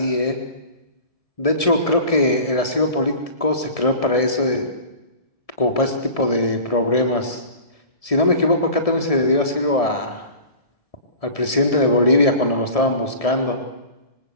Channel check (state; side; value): late; right; 1.7 ms